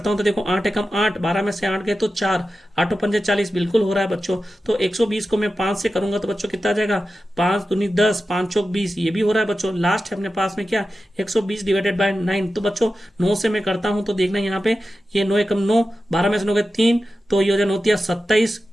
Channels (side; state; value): both; normal; correlation 0.93